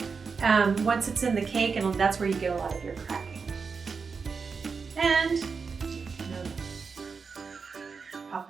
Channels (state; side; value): quieter; left; 5.2 dB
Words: once it's in the cake, and that's where you get a lot of your cracking. And pop